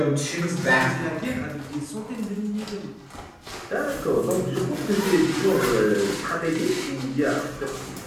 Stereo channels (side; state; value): both; identical; correlation 1.00